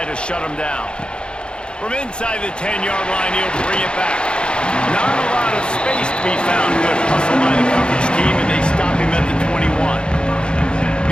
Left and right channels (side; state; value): right; late; 0.053 ms